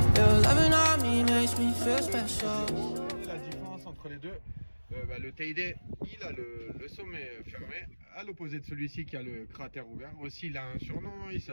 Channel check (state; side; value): inverted; both; correlation -1.00